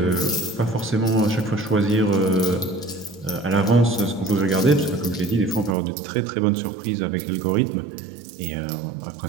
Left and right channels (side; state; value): left; drops out; at 5.8 s